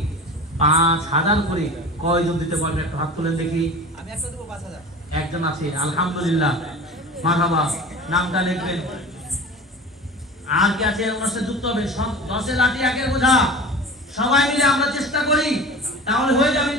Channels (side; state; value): both; normal; correlation 0.36